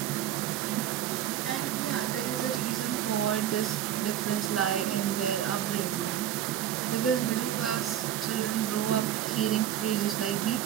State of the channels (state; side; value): quieter; left; 11.2 dB